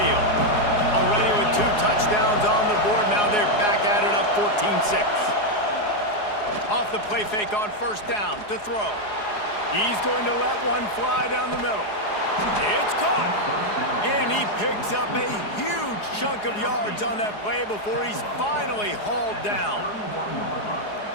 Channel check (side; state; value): right; late; 4.8 ms